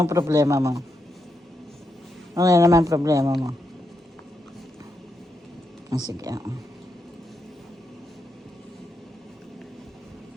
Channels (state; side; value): normal; both; correlation 0.83